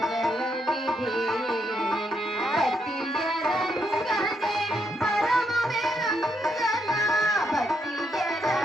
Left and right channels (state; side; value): normal; both; correlation 0.77